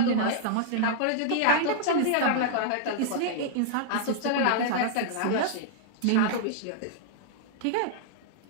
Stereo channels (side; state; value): both; different; correlation -0.01